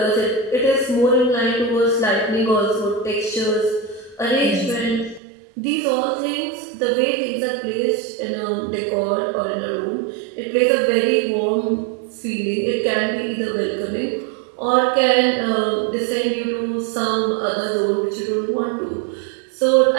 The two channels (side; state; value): left; drops out; at 5.2 s